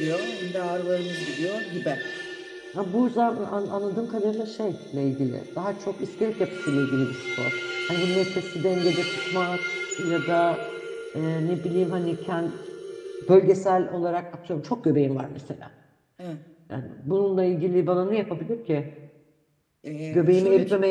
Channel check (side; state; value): both; identical; correlation 1.00